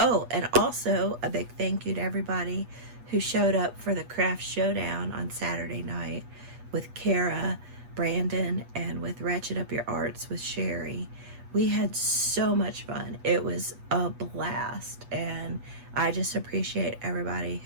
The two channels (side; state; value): left; late; 8.2 ms